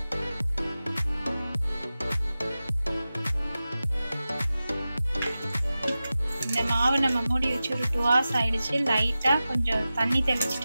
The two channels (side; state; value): both; inverted; correlation -0.95